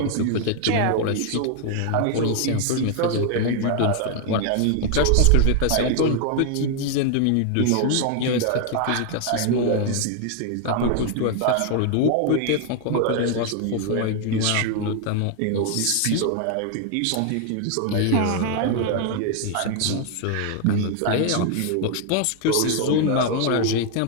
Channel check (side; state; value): both; different; correlation 0.00